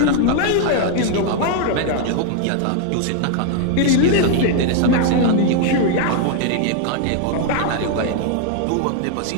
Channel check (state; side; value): different; both; correlation 0.00